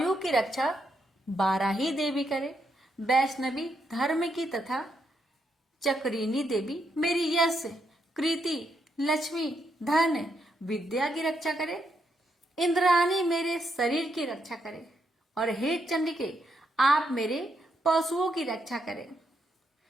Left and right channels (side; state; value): both; normal; correlation 0.79